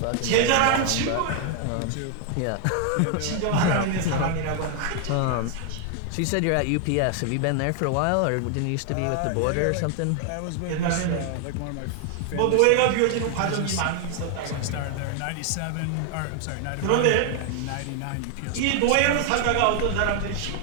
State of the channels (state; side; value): different; both; correlation 0.00